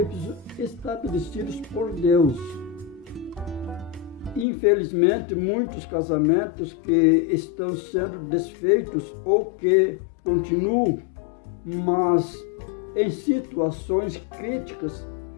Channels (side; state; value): right; drops out; at 4.5 s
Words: estabelecidos por Deus. Infelizmente, muitos casamentos que estão sendo desfeitos ou que continuam, mas em situações críticas,